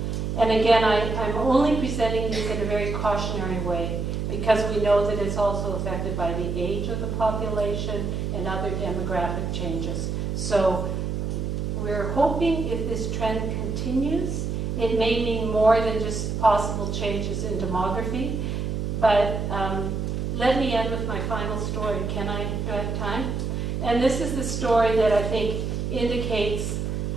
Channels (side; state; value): right; noise; hum, 2 dB below the sound